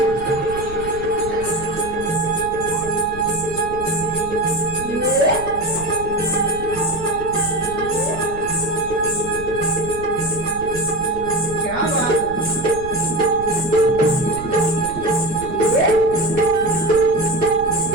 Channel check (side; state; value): right; noise; rumble, 13 dB below the sound